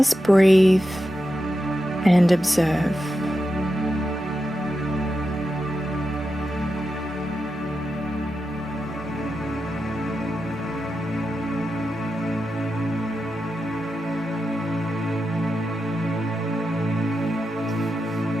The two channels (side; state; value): both; normal; correlation 0.89